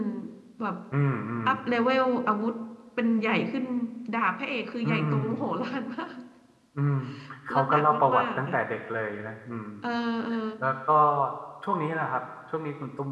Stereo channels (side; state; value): both; identical; correlation 1.00